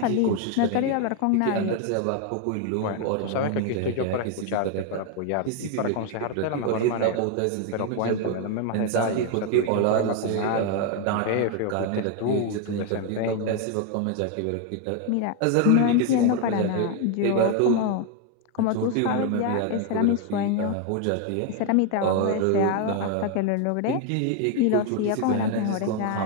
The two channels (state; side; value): different; both; correlation 0.01